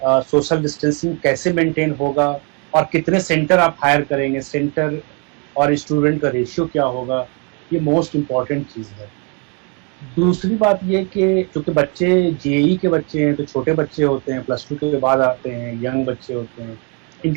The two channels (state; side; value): quieter; left; 36.1 dB